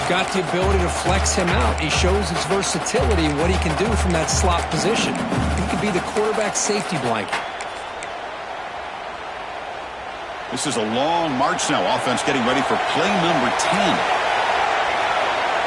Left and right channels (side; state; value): both; identical; correlation 1.00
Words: got the ability to flex him out. He shows his versatility and what he can do from that slot position. He could be the quarterback safety blanket. This is a long march now. Offense getting ready for play number 10.